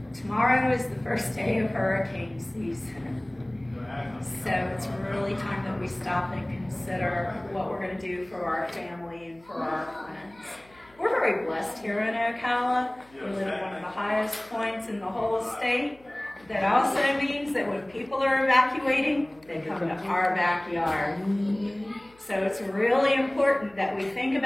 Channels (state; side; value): noise; left; hum, 29 dB below the sound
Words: tomorrow is the first day of hurricane season. So it's really time that we stop and consider what we're going to do for our family and for our friends. We're very blessed here in Ocala. We live at one of the highest points in the whole state. That also means that when people are evacuating, they come to our backyard. So it's really important that we think